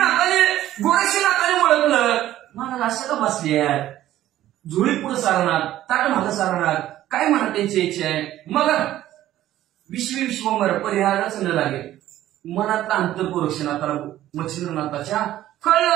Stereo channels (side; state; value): left; quieter; 13.6 dB